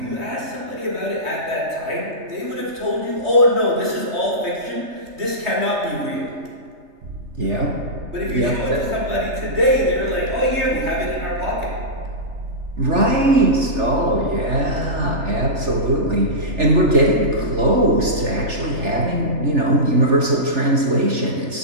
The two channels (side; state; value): left; late; 3.4 ms